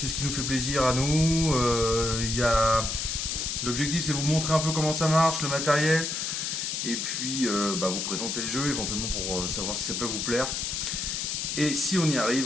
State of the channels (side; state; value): left; noise; hiss, 2 dB below the sound